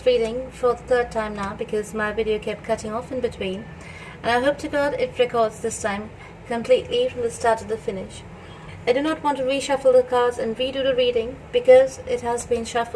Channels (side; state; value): both; identical; correlation 1.00